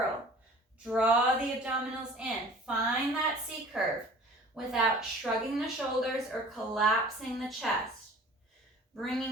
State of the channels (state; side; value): normal; both; correlation 0.46